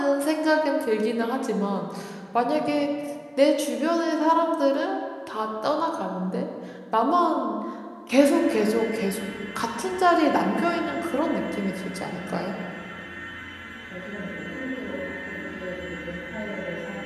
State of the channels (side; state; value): both; identical; correlation 1.00